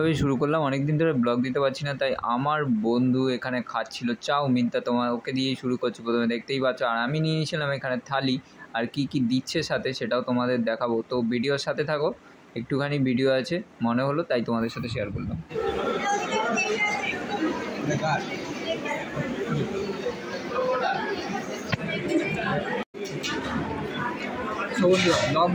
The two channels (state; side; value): identical; both; correlation 1.00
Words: শুরু করলাম। অনেক দিন ধরে ব্লগ দিতে পারছি না, তাই আমার বন্ধু এখানে খাচ্ছিল চাউমিন। তা তোমার ওকে দিয়েই শুরু করছি। প্রথমে দেখতেই পাচ্ছ, আর আমি নিয়ে নিয়েছিলাম এখানে থালি। আর কি কি দিচ্ছে সাথে সেটাও তোমাদের দেখাবো। তো ভিডিওর সাথে থাকো, একটুখানি ভিডিও আছে মনে হলো তাই তোমাদের সাথে শেয়ার করলাম। সো বন্ধুরা, ব্লগ